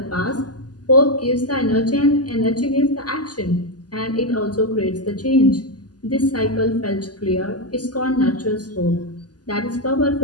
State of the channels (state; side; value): late; right; 0.69 ms